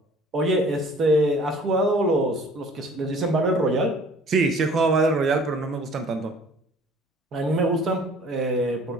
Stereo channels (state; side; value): normal; both; correlation 0.51